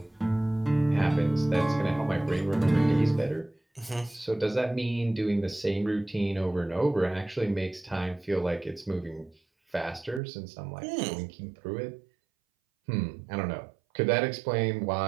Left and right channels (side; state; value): left; drops out; at 10.2 s